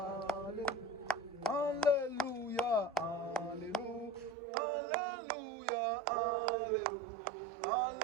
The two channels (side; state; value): left; drops out; at 4.4 s